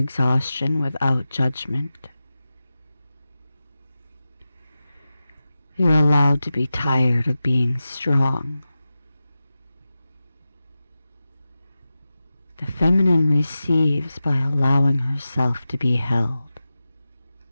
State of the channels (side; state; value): both; inverted; correlation -0.93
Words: without judgment. You're allowed to be tired of being strong. The feminine receives by allowing herself to be held.